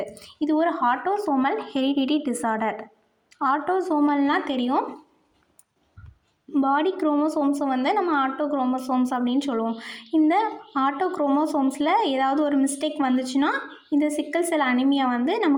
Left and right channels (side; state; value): both; identical; correlation 1.00